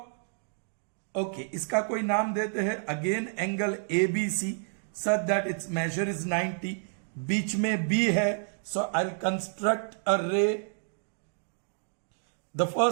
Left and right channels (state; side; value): silent; left; 58 dB below the other